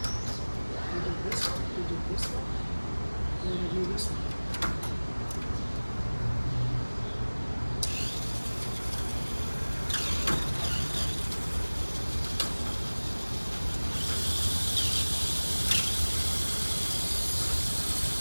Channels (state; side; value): inverted; both; correlation -1.00